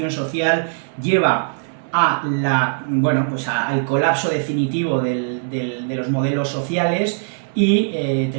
social, lleva a al colapso definitivo de los modelos sociales, y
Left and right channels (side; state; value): left; silent; digital silence